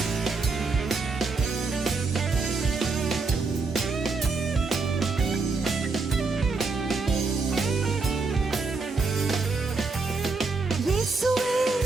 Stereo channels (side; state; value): left; quieter; 4.1 dB